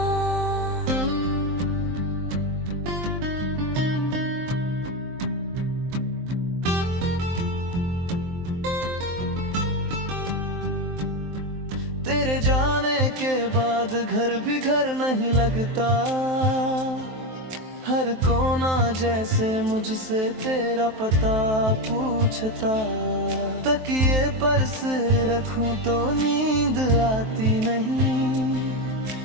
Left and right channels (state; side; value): late; left; 23 ms